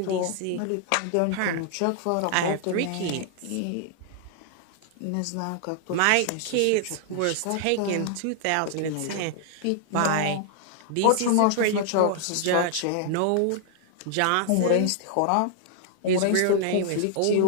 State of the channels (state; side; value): different; both; correlation 0.00